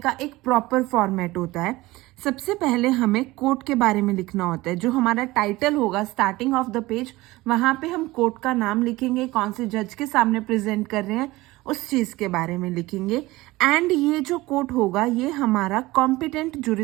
एक प्रॉपर फॉर्मेट होता है. सबसे पहले हमें कोर्ट के बारे में लिखना होता है. जो हमारा टाइटल होगा स्टार्टिंग ऑफ द पेज, वहां पे हम कोर्ट का नाम लिखेंगे, कौन से जज के सामने प्रेजेंट कर रहे हैं उस चीज के बारे में लिखेंगे. एंड ये जो कोर्ट होगा ये हमारा कॉम्पिटेंट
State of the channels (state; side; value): quieter; left; 19.5 dB